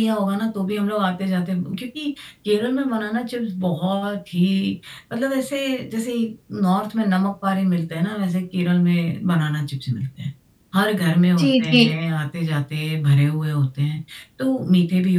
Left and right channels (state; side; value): identical; both; correlation 1.00